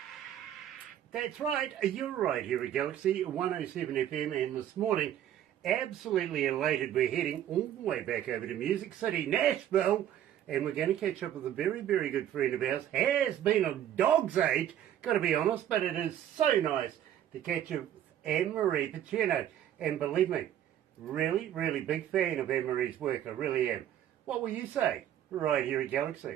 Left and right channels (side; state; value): left; quieter; 11.0 dB